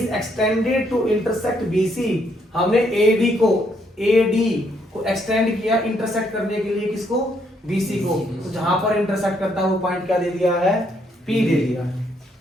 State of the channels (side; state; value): both; normal; correlation 0.72